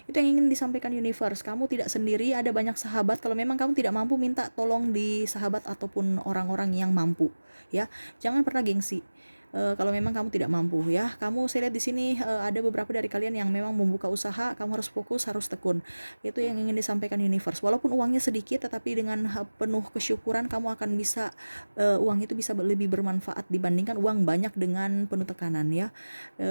Itu yang ingin disampaikan universe. Kamu tidak sendiri, ada banyak sahabat. Kalau memang kamu tidak mampu, minta tolong di sahabat ataupun orang-orang yang mampu ya. Jangan pernah gengsi. Kalau memang kamu tidak mampu ya, saya lihat di sini ada beberapa dari kalian yang memang membuka usaha, kamu harus fokus, harus tekun. Itu yang ingin disampaikan universe. Walaupun uangnya sedikit, tetapi dengan penuh kesyukuran kamu akan bisa uang itu bisa lebih bermanfaat dibandingkan uang banyak dengan penuh tekanan ya.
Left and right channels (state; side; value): inverted; both; correlation -1.00